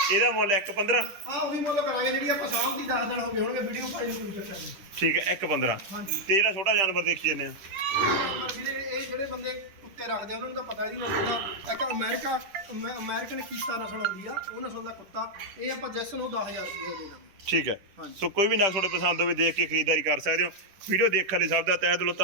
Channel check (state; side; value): late; left; 10 ms